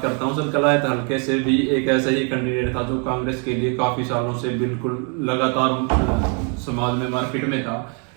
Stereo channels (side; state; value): left; quieter; 38.0 dB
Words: करता हूँ सर। कलायत हल्के से भी एक ऐसा ही कैंडिडेट था जो कांग्रेस के लिए काफी सालों से बिल्कुल लगातार समाज में मार्केट में था,